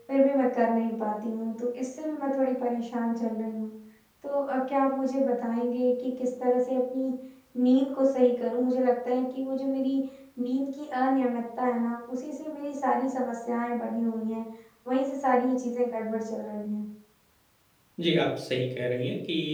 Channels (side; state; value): both; identical; correlation 1.00